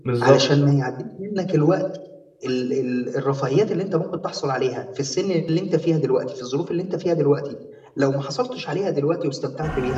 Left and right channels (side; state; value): both; identical; correlation 1.00